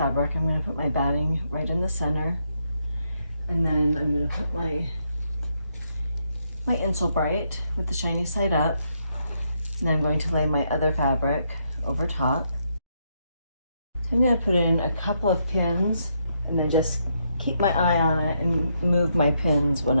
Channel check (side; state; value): both; inverted; correlation -0.78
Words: I'm gonna put my batting right in the center. And then I'm gonna put my insole bright with the shiny side up. And then I'm going to lay my other fabric over top. So I'm gonna put in a couple of pins and then just keep my eye on it and move my pins when